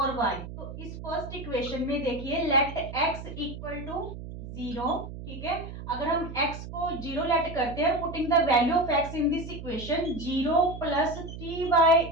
y, तो इस फर्स्ट इक्वेशन में देखिए लेट x इक्वल टू 0, ठीक है। अगर हम x को 0 लेट करते हैं, putting the value of x in this equation 0 plus 3y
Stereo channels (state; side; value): noise; right; hum, 10 dB below the sound